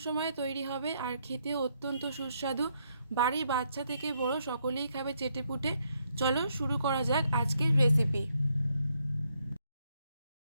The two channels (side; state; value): both; inverted; correlation -0.75